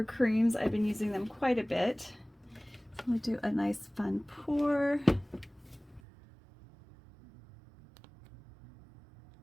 creams. I've been using them quite a bit. So we'll do a nice fun pour.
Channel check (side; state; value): left; drops out; at 6.0 s